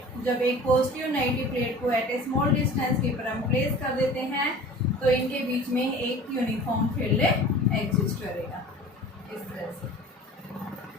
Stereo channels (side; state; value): both; normal; correlation 0.42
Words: जब एक पॉजिटिव नेगेटिव प्लेट को एट ए स्मॉल डिस्टेंस के ऊपर हम प्लेस कर देते हैं तो इनके बीच में एक यूनिफॉर्म फील्ड एग्जिस्ट करेगा इस तरह से।